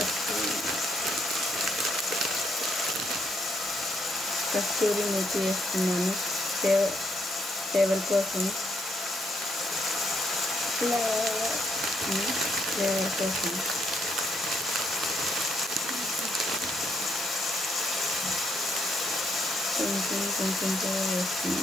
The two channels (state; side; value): normal; both; correlation 0.74